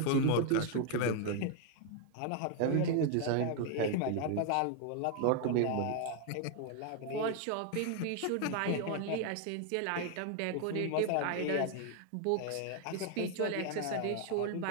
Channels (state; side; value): different; both; correlation 0.00